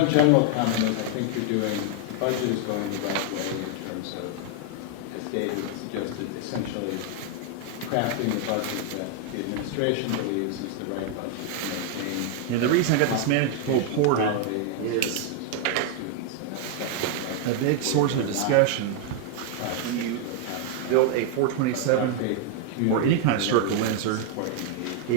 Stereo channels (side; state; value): both; different; correlation 0.00